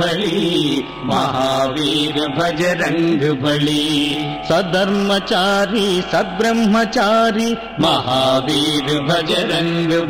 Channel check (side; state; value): both; identical; correlation 1.00